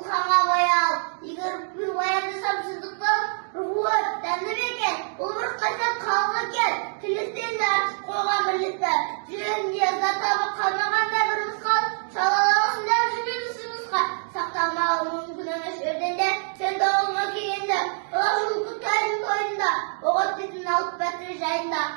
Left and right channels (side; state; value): left; silent; 62 dB below the other